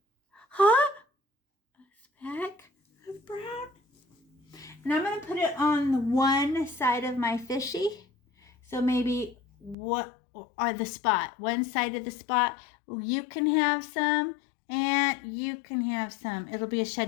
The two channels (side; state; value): right; drops out; at 9.8 s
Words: speck of brown. And I'm going to put it on one side of my fishy. So maybe the spot. One side of the spot. You can have some and you can have some. It'll be a